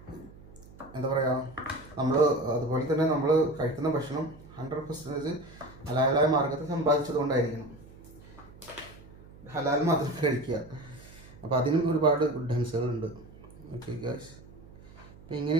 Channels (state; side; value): noise; right; hum, 20 dB below the sound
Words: എന്താ പറയുക, അതുപോലെ തന്നെ നമ്മൾ കഴിക്കുന്ന ഭക്ഷണം 100% ഹലാലായ മാർഗത്തിൽ സമ്പാദിച്ചതുകൊണ്ടായിരിക്കണം. ഹലാൽ മാത്രം കഴിക്കുക. അപ്പോൾ അതിനും ഒരുപാട് ഗുഡൻസുകളുണ്ട്. ഓക്കെ ഗായ്സ്, അപ്പോൾ